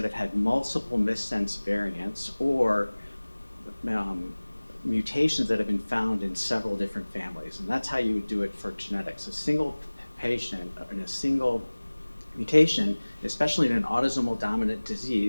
have had multiple missense variants or mutations that have been found in several different families? And that's how you would do it for genetics. A single patient in a single mutation, especially in an autosomal dominant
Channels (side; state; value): both; inverted; correlation -1.00